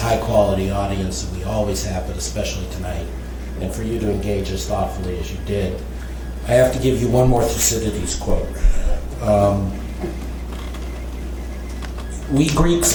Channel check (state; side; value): identical; both; correlation 1.00